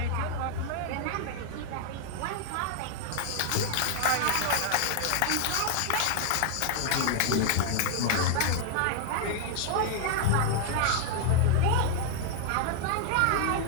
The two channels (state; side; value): different; both; correlation 0.00